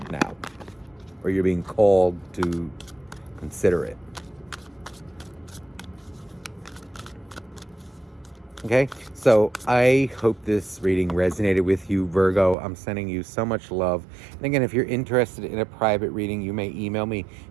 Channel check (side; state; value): left; drops out; at 12.6 s